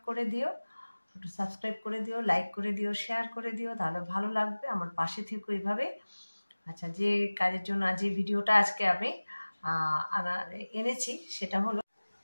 করে দিও, একটু সাবস্ক্রাইব করে দিও, লাইক করে দিও, শেয়ার করে দিও, তাহলে ভালো লাগবে, আমার পাশে থেকো এইভাবে। আচ্ছা, যে কাজের জন্য যে ভিডিওটা আজকে আমি এনেছি সেটা হলো,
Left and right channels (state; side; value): inverted; both; correlation -1.00